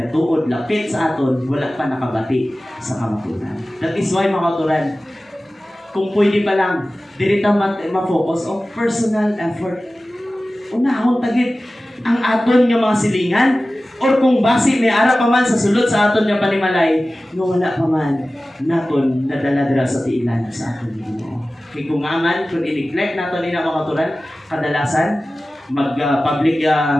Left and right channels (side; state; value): both; normal; correlation 0.96